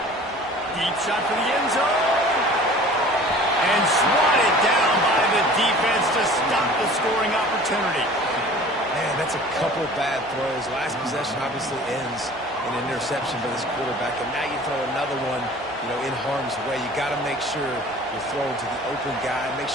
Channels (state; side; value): normal; both; correlation 0.45